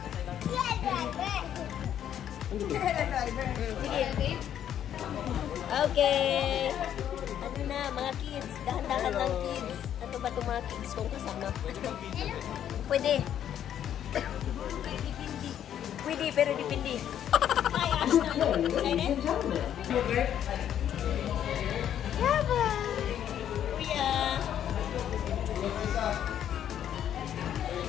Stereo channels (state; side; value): quieter; right; 10.1 dB